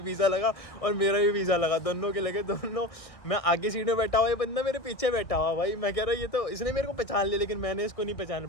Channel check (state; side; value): late; right; 1.7 ms